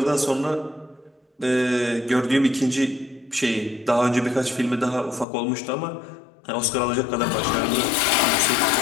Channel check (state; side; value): drops out; right; at 5.2 s